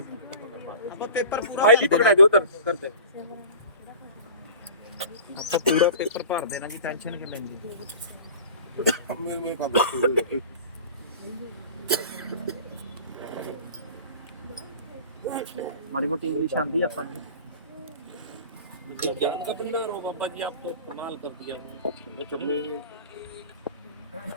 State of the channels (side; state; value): both; inverted; correlation -0.39